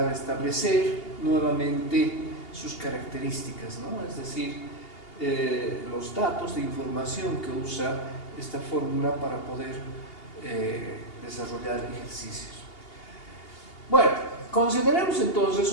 a establecer nuevamente sus características, ¿no? Es decir, los datos de información que usa esta fórmula para poder desarrollar ejercicios. Bueno, consideremos entonces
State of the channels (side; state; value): right; late; 2.8 ms